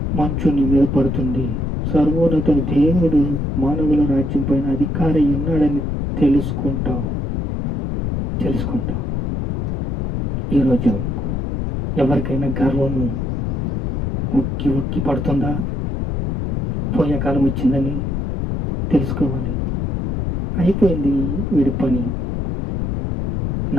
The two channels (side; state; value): left; noise; rumble, 1 dB below the sound